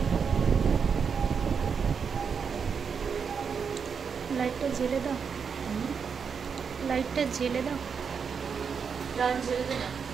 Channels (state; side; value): quieter; left; 6.3 dB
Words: লাইটটা জ্বেলে দাও, লাইটটা জ্বেলে দাও। জ্বেলে দে না।